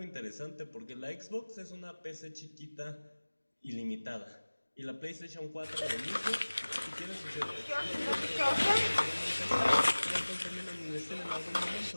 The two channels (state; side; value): inverted; both; correlation -1.00